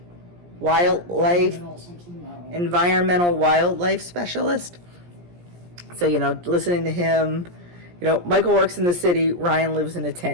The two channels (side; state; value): left; late; 17 ms